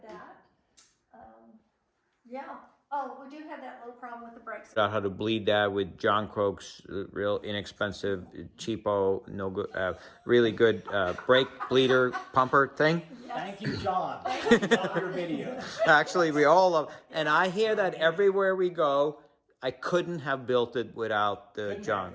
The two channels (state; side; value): identical; both; correlation 1.00